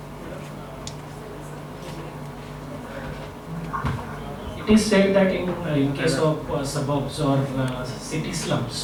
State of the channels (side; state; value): both; identical; correlation 1.00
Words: it is said that in case of suburbs or city